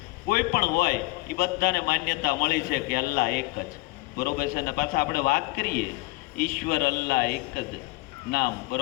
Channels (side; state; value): right; quieter; 23.6 dB